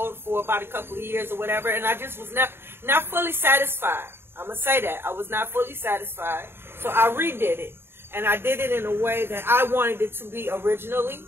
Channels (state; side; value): late; left; 0.11 ms